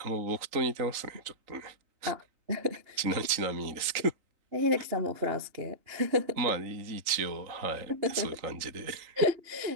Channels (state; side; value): late; left; 3.8 ms